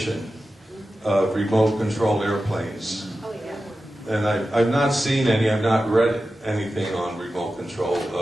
of remote control airplanes. And I've not seen any, I've not read anything on remote control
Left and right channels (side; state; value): both; normal; correlation 0.93